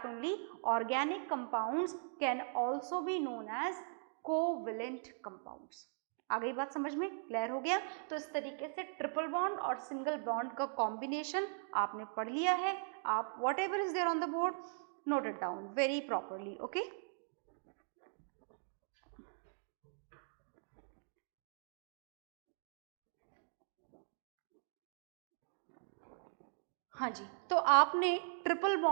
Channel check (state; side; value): silent; left; digital silence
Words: only organic compounds can also be known as covalent compounds. आ गई बात समझ में? क्लियर हो गया? तो इस तरीके से ट्रिपल बॉन्ड और सिंगल बॉन्ड का कॉम्बिनेशन आपने पढ़ लिया है. आप whatever is there on the board note it down very properly. Okay, हाँ जी. तो आपने ट्रिपल